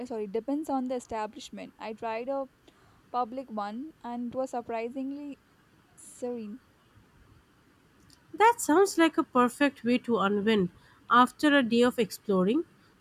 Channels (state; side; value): identical; both; correlation 1.00